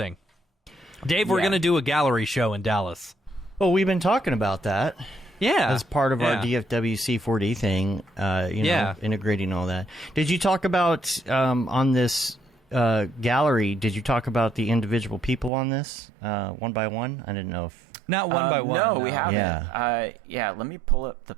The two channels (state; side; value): drops out; left; at 15.5 s